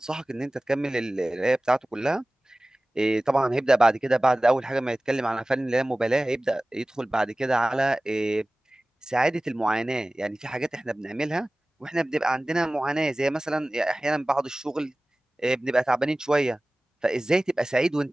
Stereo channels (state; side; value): normal; both; correlation 0.98